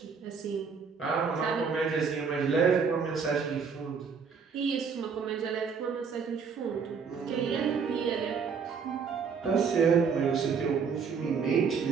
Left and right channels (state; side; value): quieter; left; 5.9 dB